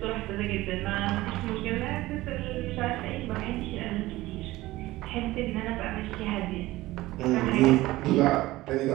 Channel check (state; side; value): quieter; left; 17.9 dB